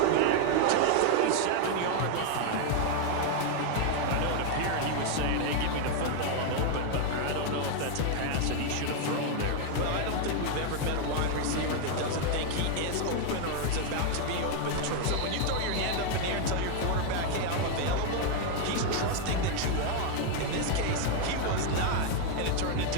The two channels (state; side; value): different; both; correlation 0.01